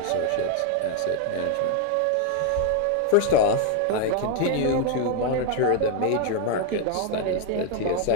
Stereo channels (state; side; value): different; both; correlation 0.00